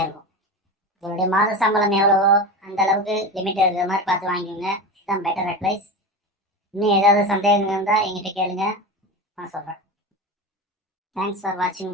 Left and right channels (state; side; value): normal; both; correlation 0.24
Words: இருக்கும். உங்களுடைய மாத சம்பளம் எவ்வளவோ அந்த அளவுக்கு லிமிட் இருக்கிற மாதிரி பார்த்து வாங்கிக்கோங்க. இதுதான் பெட்டர் அட்வைஸ். இன்னும் ஏதாவது சந்தேகங்கள் இருந்தால் எங்கிட்ட கேளுங்க, நான் சொல்கிறேன். Thanks for watching